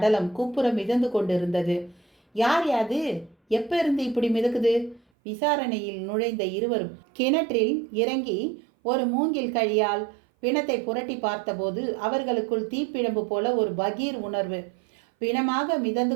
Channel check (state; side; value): drops out; left; at 5.0 s